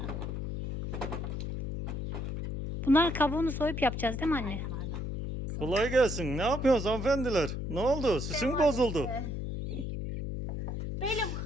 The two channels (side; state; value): left; noise; hum, 4 dB below the sound